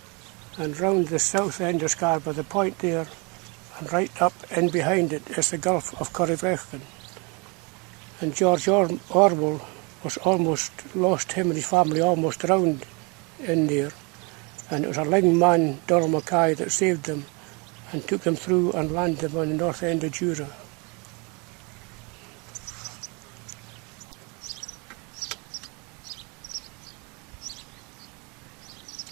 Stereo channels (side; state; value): left; quieter; 30.5 dB